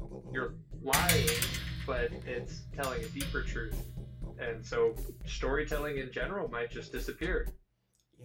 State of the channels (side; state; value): both; identical; correlation 1.00